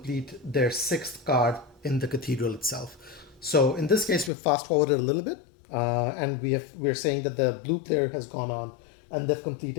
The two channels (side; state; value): right; drops out; at 4.3 s